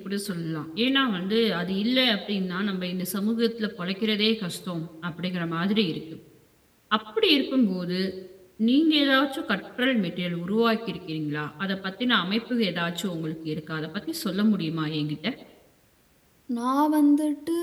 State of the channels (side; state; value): both; identical; correlation 1.00